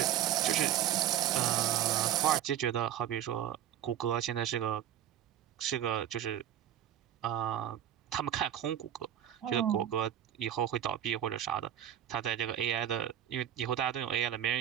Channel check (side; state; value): left; quieter; 10.8 dB